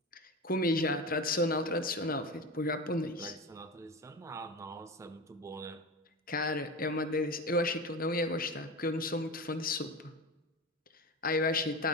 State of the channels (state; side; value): normal; both; correlation 0.26